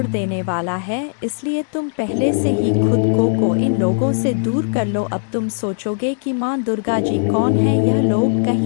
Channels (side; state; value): right; silent; digital silence